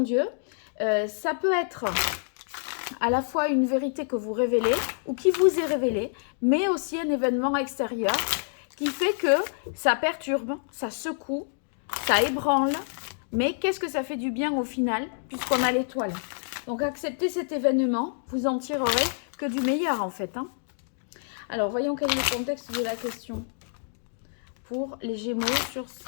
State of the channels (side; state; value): right; silent; digital silence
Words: ça peut être à la fois une vérité que vous révélez ou qui vous est révélée, mais aussi un événement extérieur qui fait que ça perturbe, ça secoue, ça ébranle, mais qu'est-ce que ça fait du bien au final, puisqu'on a l'étoile. Donc acceptez cet événement, vous en tirerez que du meilleur en fait. Alors voyons quel est le contexte de la question pour les Gémeaux sur